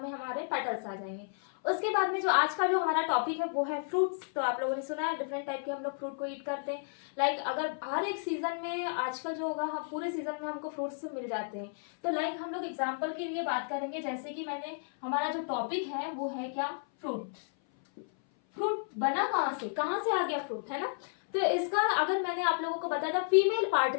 में हमारे पेटल्स आ जाएंगे। उसके बाद में जो आज का जो हमारा टॉपिक है वो है फ्रूट्स। तो आप लोगों ने सुना है डिफरेंट टाइप के हम लोग फ्रूट को ईट करते हैं। लाइक अगर हर एक सीजन में आजकल जो होगा, हम पूरे सीजन में हमको फ्रूट्स मिल जाते हैं। तो लाइक हम लोग एग्जांपल के लिए बात करेंगे, जैसे कि मैंने हमारा जो टॉपिक है वो है क्या? फ्रूट। फ्रूट बना कहाँ से आ गया फ्रूट, है ना? तो इसका अगर मैंने आप लोगों को बताया था फीमेल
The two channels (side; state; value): right; silent; 56 dB below the other